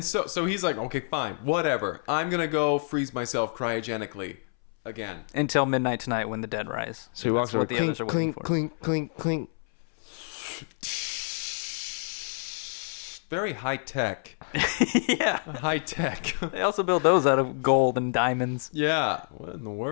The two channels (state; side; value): silent; right; 59 dB below the other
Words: so he's like, okay, fine, whatever. I'm gonna go freeze myself cryogenically again until midnight tonight when the dead rise. So he walks over. What the others are waiting for. Clink. Very high tech. Yeah. High tech. They also build those out of gold and diamonds. Yeah. What in the